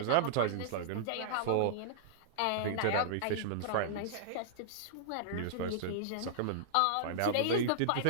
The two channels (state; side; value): different; both; correlation -0.02